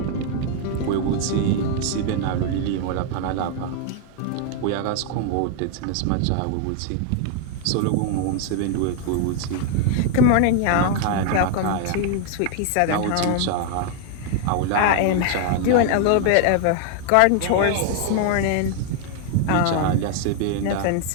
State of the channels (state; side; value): different; both; correlation 0.00